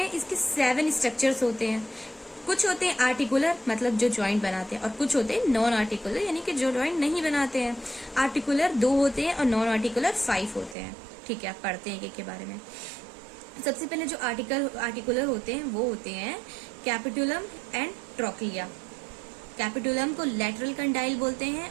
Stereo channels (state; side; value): drops out; left; at 10.8 s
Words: इसके 7 स्ट्रक्चर्स होते हैं। कुछ होते हैं आर्टिकुलर, मतलब जो जॉइंट बनाते हैं, और कुछ होते हैं नॉन आर्टिकुलर, यानी कि जो जॉइंट नहीं बनाते हैं। आर्टिकुलर 2 होते हैं और नॉन आर्टिकुलर 5 होते हैं। ठीक है, आप पढ़ते हैं एक के बारे में। सबसे पहले जो आर्टिकुलर होते हैं वो होते हैं कैपिटुलम एंड ट्रोक्लिया। कैपिटुलम को लेटरल कंडाइल बोलते